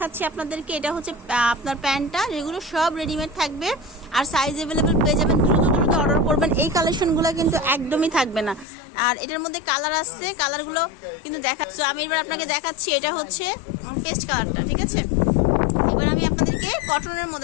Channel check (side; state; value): right; drops out; at 8.7 s